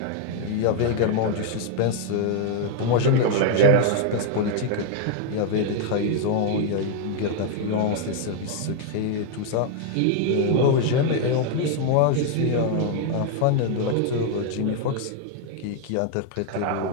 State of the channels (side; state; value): both; different; correlation 0.00